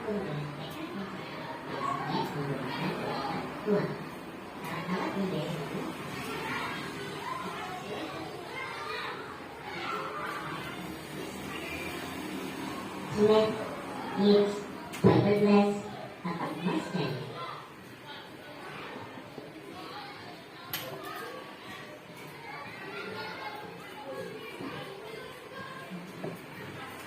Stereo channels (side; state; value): both; identical; correlation 1.00